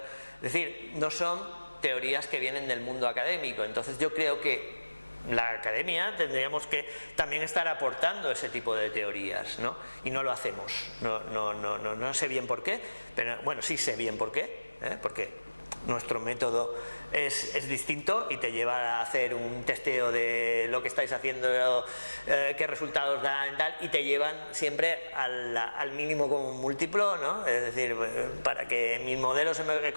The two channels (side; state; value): both; inverted; correlation -1.00